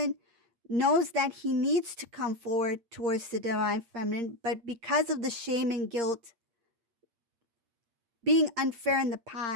knows that he needs to come forward towards the divine feminine, but because of the shame and guilt, being unfair in the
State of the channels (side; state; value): left; late; 8.6 ms